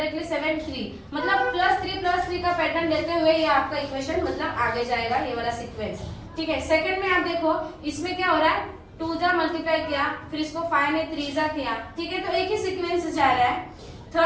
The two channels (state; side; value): identical; both; correlation 1.00